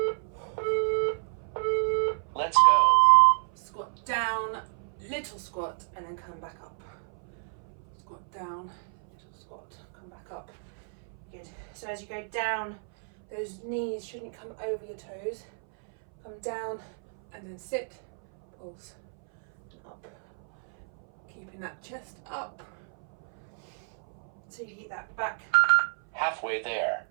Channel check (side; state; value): left; silent; 58 dB below the other